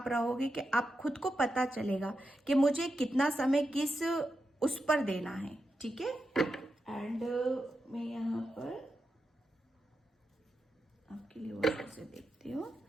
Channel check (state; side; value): normal; both; correlation 0.88